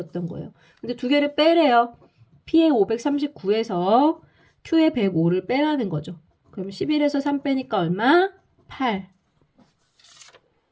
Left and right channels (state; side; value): identical; both; correlation 1.00